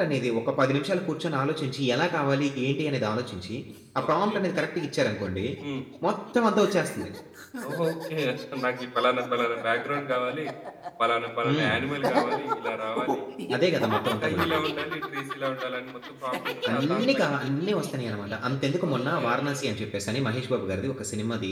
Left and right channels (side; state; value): both; identical; correlation 1.00